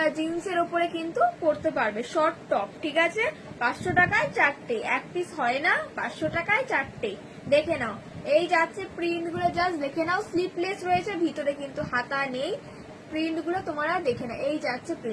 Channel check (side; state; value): both; identical; correlation 1.00